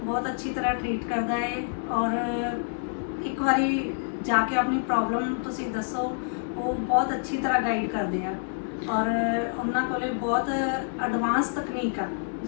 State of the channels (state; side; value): silent; right; 60 dB below the other